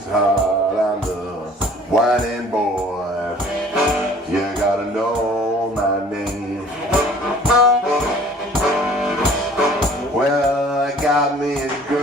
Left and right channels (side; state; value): both; normal; correlation 0.51